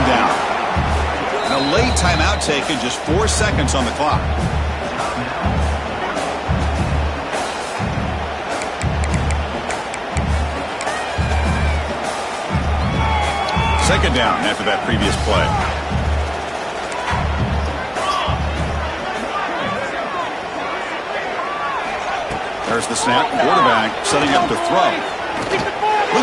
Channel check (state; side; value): identical; both; correlation 1.00